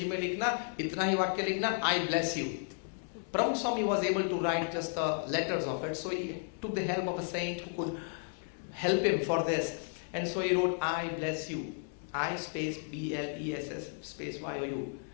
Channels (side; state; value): right; silent; 55 dB below the other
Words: में लिखना, इतना ही वाक्य लिखना, आई bless you. Pramukh Swami was able to write just the letters of it, so he took the help of a saint who could help him for this. And so he wrote, I bless you. I space B-L-E-S-S space Y-O-U.